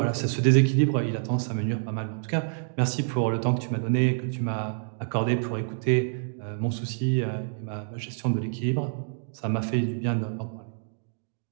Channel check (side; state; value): left; silent; digital silence